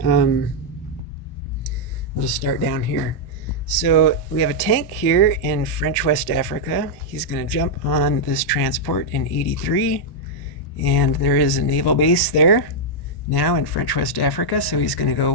we'll just start down here. So we have a tank here in French West Africa. He's going to jump on this transport in 83, and there is a naval base there now in French West Africa. So he's going to go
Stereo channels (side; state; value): right; late; 1.1 ms